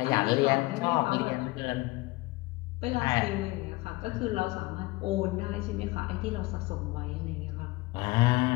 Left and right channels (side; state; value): right; quieter; 21.4 dB